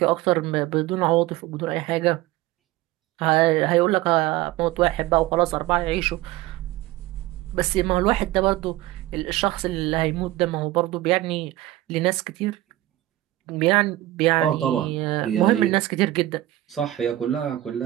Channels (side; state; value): left; quieter; 16.1 dB